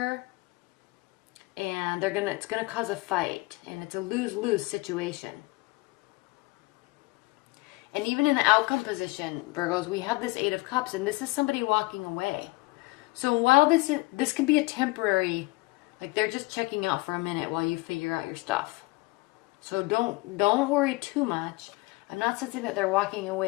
and it's going to cause a fight, and it's a lose-lose situation. And even in the outcome position, Virgos, we have this 8 of Cups, and this is somebody walking away. So while this can be a temporary, like they're just checking out for a minute while you figure out your stuff. So don't worry too much. I'm not saying that they're walking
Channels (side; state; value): right; quieter; 23.6 dB